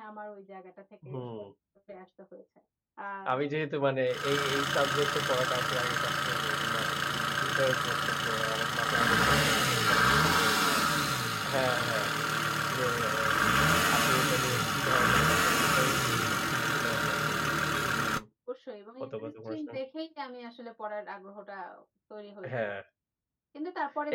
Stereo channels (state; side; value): identical; both; correlation 1.00